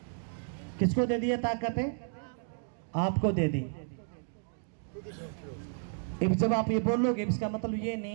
किसको दे दी ये ताकत? आपको दे दी। अब जब आप ये बोलोगे, इसका मतलब ये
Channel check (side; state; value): left; silent; digital silence